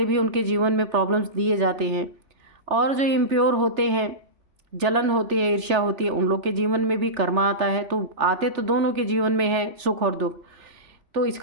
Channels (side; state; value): left; late; 3.4 ms